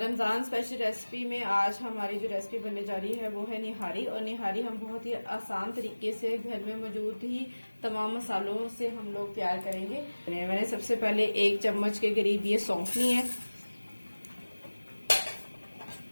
स्पेशल रेसिपी में आज हमारी जो रेसिपी बनने जा रही है वो है निहारी। और निहारी हम बहुत ही आसान तरीके से घर में मौजूद ही तमाम मसालों से हम लोग तैयार करेंगे। मैंने सबसे पहले 1 चम्मच के करीब ये सौंफ ली है,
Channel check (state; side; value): inverted; both; correlation -1.00